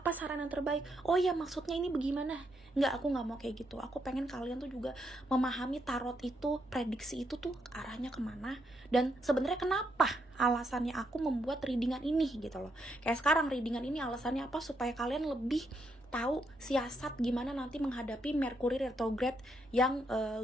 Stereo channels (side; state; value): both; normal; correlation 0.78